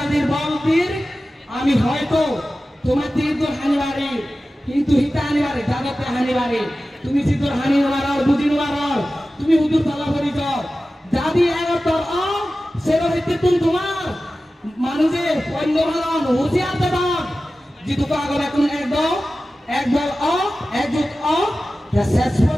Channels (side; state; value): both; normal; correlation 0.95